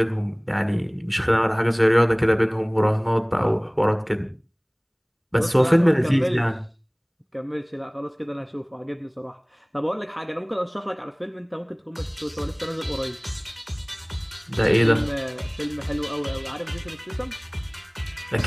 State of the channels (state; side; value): identical; both; correlation 1.00